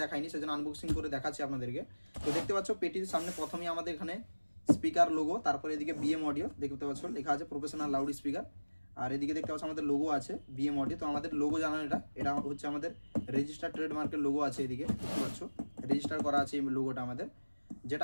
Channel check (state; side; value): inverted; both; correlation -1.00